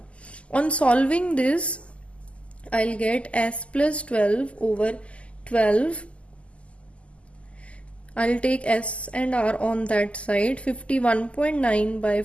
On solving this, I'll get S plus 12 over 12. I'll take S and R on that side, 51.9 by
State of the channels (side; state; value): right; late; 0.058 ms